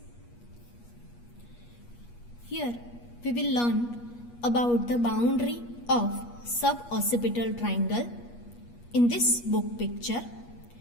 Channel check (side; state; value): right; late; 8.4 ms